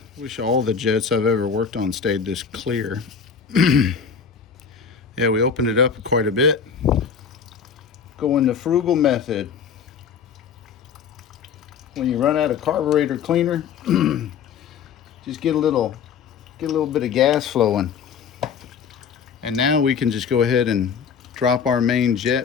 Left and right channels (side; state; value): right; quieter; 6.6 dB